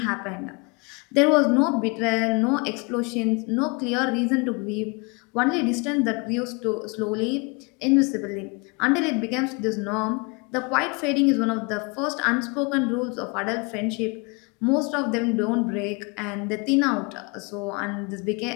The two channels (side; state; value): right; quieter; 30.2 dB